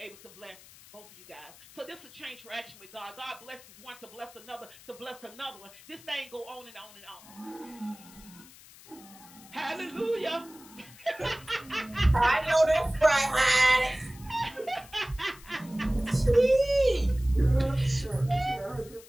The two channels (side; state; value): left; noise; hiss, 21 dB below the sound